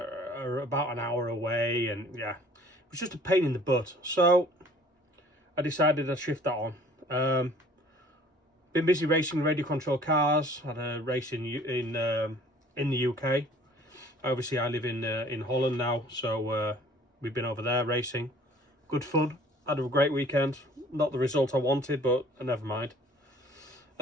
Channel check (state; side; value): normal; both; correlation 0.52